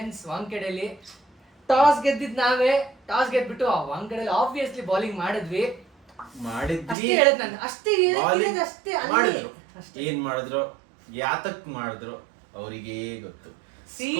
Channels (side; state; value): left; drops out; at 7.0 s